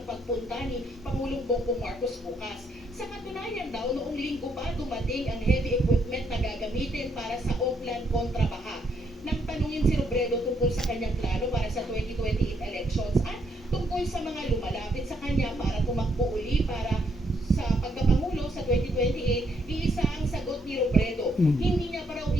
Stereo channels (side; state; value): both; normal; correlation 0.73